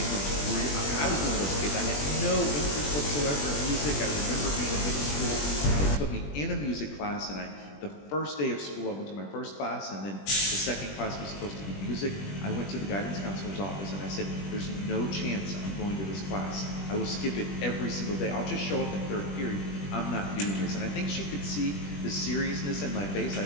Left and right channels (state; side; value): late; right; 20 ms